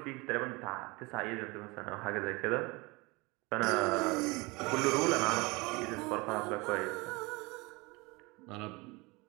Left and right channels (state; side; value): quieter; left; 25.3 dB